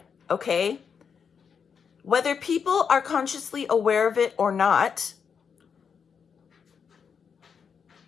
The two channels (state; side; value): quieter; right; 6.6 dB